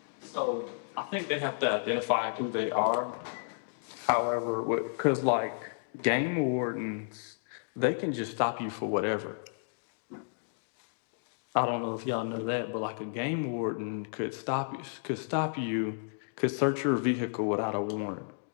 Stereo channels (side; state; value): right; silent; digital silence